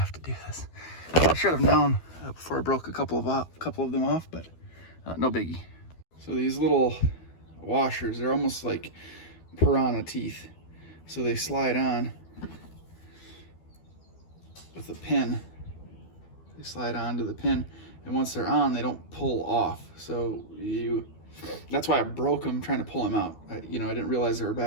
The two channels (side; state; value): right; late; 12 ms